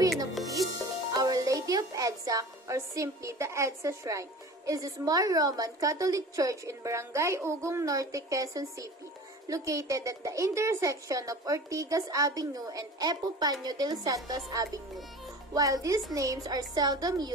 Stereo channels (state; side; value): normal; both; correlation 0.39